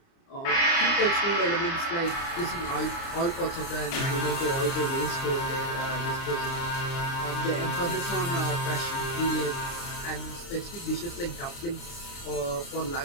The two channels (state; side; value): late; right; 29 ms